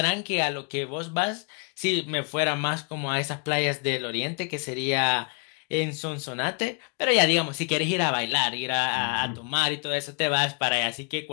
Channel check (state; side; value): quieter; right; 38.1 dB